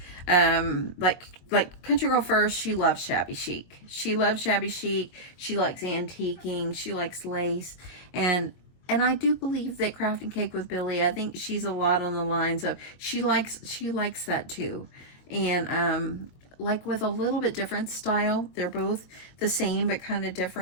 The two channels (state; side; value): late; right; 22 ms